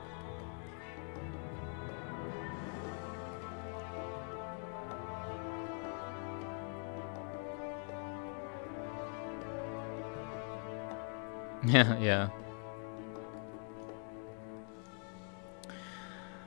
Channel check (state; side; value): quieter; right; 39.8 dB